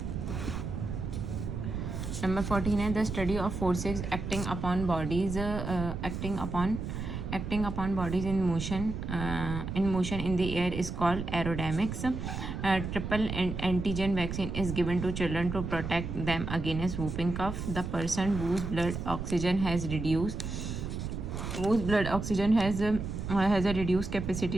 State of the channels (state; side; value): noise; right; rumble, 5 dB below the sound